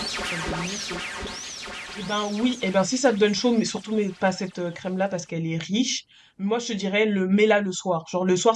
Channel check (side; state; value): both; identical; correlation 1.00